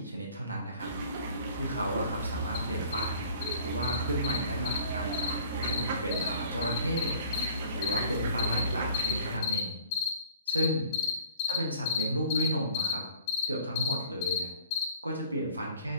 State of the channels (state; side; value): inverted; both; correlation -0.50